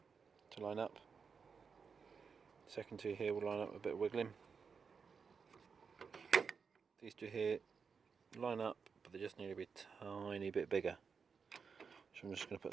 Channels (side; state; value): left; quieter; 5.7 dB